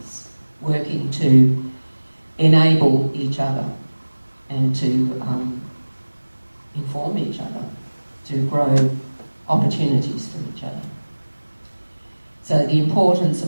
working to enable each other and to inform each other, to grow opportunities for each other. So the importance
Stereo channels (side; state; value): both; inverted; correlation -1.00